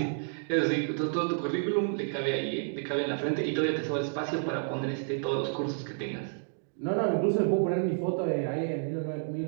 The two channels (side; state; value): left; silent; digital silence